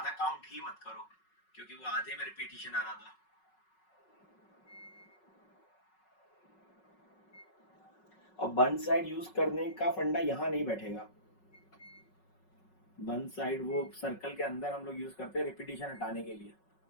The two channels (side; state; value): right; late; 5.4 ms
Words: काउंट ही मत करो, क्योंकि वो आधे में रिपीटिशन आ रहा था। और वन साइड यूज करने का फंडा यहाँ नहीं बैठेगा, वन साइड वो सर्कल के अंदर हम लोग यूज करते हैं रिपीटिशन हटाने के लिए।